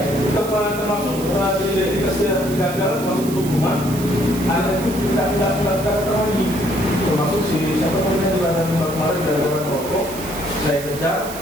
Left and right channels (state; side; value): noise; right; hiss, 12 dB below the sound